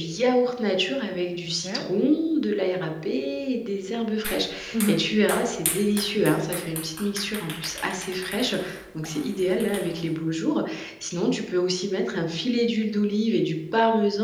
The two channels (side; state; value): both; identical; correlation 1.00